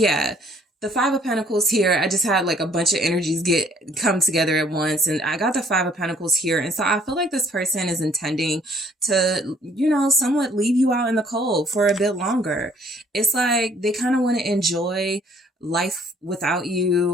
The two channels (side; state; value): both; normal; correlation 0.61